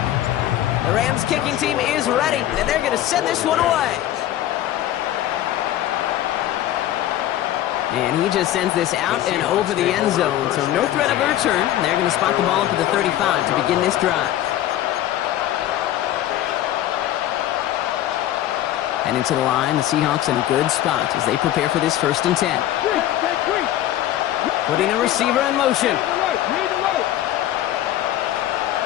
The Rams kicking team is ready, and they're going to send this one away. And he just sends this out and over the end zone, so no threat of a return. They're going to spot the ball up at the 35 to begin this drive. And into the line, the Seahawks in a good spot as they prepare for this 1st and 10. Putting a receiver in motion.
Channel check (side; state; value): right; quieter; 13.0 dB